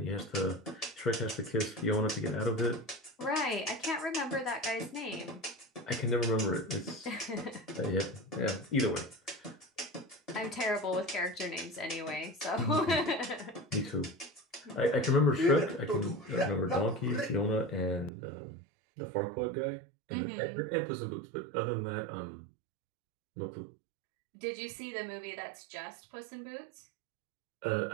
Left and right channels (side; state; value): left; drops out; at 18.1 s